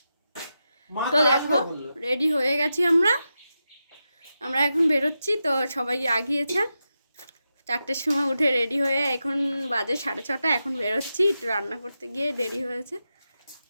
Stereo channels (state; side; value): inverted; both; correlation -0.89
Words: তো দেখো রেডি হয়ে গেছি আমরা এখন বেরোচ্ছি। তো সবাই আগিয়েছে, 4টের সময় উঠে রেডি হয়ে এখন বাজে 6:30। এখন বেরোচ্ছি, একটু রান্না করতে গিয়ে দেরি হয়েছে।